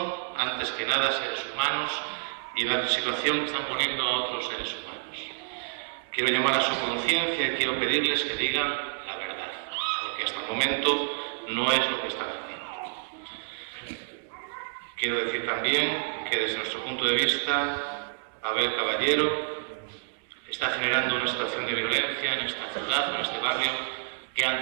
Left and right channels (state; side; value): silent; left; 59 dB below the other